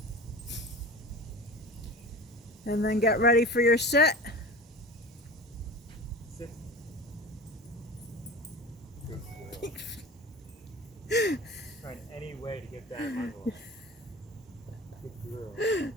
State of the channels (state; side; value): normal; both; correlation 0.35